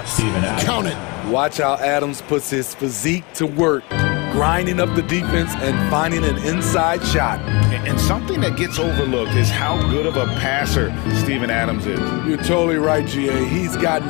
Count it. Watch how Adams puts his physique to work, grinding up the defense and finding an inside shot. And something that gets overlooked is how good of a passer Steven Adams is. You're totally right, GA. He's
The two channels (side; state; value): right; quieter; 27.7 dB